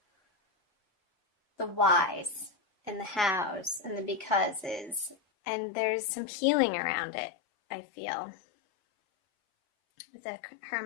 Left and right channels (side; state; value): right; drops out; at 5.2 s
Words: the whys and the hows and the becauses. And there's some healing around it, I feel. With the